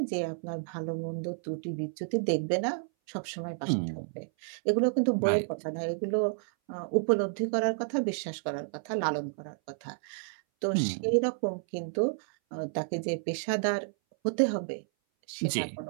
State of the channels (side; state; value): left; silent; 57 dB below the other